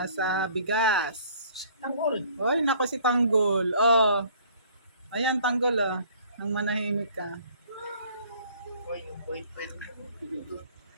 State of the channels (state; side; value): inverted; both; correlation -0.55